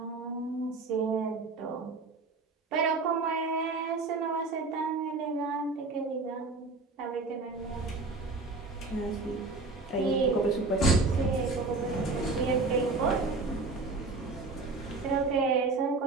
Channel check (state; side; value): quieter; left; 3.7 dB